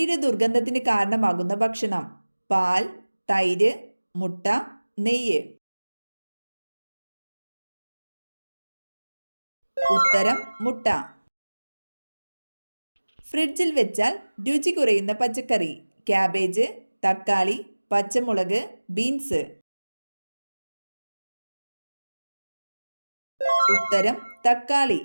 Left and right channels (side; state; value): both; inverted; correlation -1.00